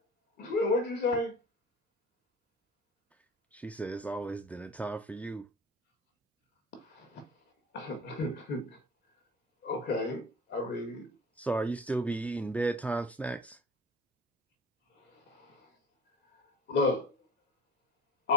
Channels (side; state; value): both; normal; correlation 0.40